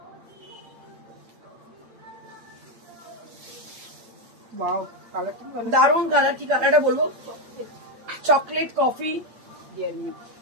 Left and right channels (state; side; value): late; left; 8.5 ms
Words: ওয়াও, কালারটা ভালো, দারুণ কালার। কি কালারটা বলবো, চকলেট কফি,